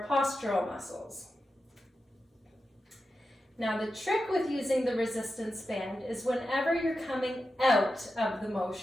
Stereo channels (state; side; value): normal; both; correlation 0.90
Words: postural muscles. Now the trick with using the resistance band is whenever you're coming out of the